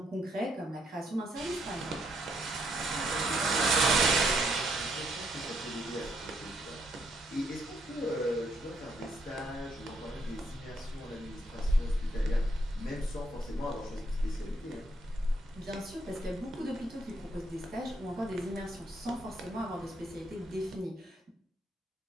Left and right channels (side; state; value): both; normal; correlation 0.74